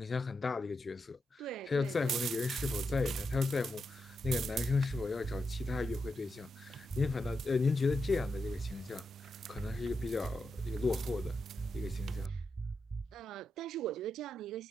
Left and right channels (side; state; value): both; normal; correlation 0.86